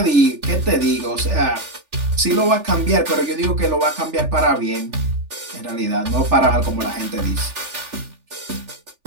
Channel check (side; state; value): left; late; 3.4 ms